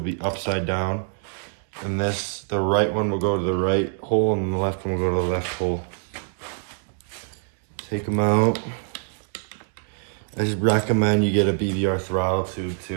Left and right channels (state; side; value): silent; left; digital silence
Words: be upside down. And the right one will go to the right hole and the left one will go to the left hole. Take them out. I just recommend you get a BVR throttle tube